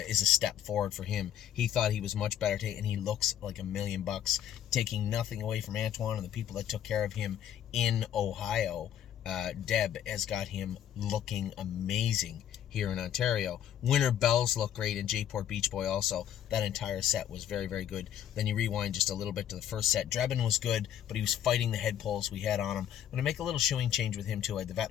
step forward for him. He thought he was much better today, and he looks like $1,000,000, taking nothing away from Antoine and the people that took care of him in Ohio. Deb has got him looking amazing here in Ontario. Winter Bells look great, and Jayport Beach Boy also. That entire set was very, very good. Then you rewind just a little bit to the first set. Drebin was good, but he was fighting the head pulls we had on him. I'm going to make a little shoeing change with him too. I had the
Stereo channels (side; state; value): right; quieter; 10.2 dB